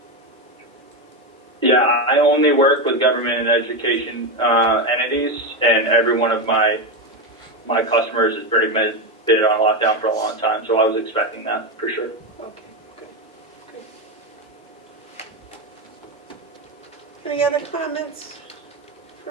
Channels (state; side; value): normal; both; correlation 0.12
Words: Yeah, I only work with government and education entities, and every one of my customers has pretty much been on lockdown for a long time, so I was expecting that for sure. Okay, good. Any other comments for